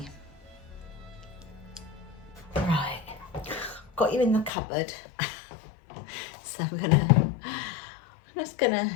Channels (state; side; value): drops out; right; at 4.5 s